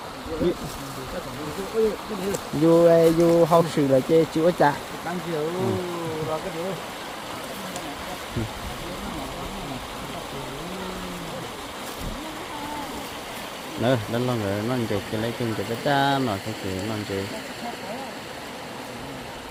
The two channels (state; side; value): identical; both; correlation 1.00